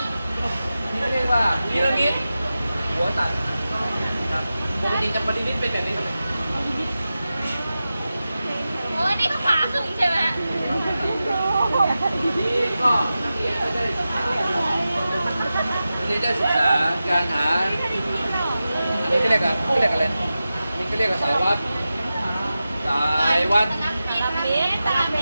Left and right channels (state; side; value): inverted; both; correlation -0.93